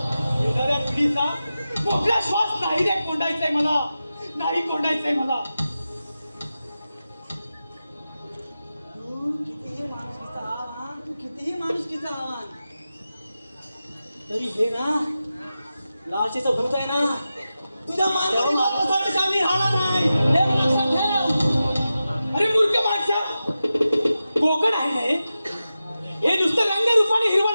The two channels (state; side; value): inverted; both; correlation -0.92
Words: येणाऱ्या पिढीचा मोकळा श्वास नाही रे कोंडायचाय मला, नाही कोंडायचंय मला. तू कितीही माणुसकीचा आव्हान तरी हे ना लालचीचं भूत आहे ना, तुझ्या मानवासाठी शामिल राहणार नाही. हे लक्षात ठेव. अरे मूर्ख माणसा, कोकण आहे ना हे नुसतं रंगरूपाने हिरवं